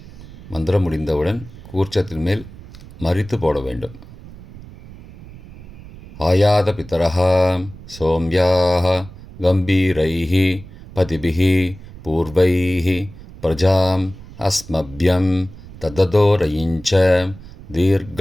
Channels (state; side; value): noise; right; rumble, 17 dB below the sound